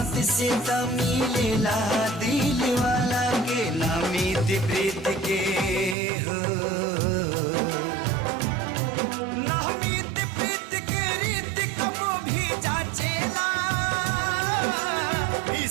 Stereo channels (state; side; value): drops out; left; at 6.0 s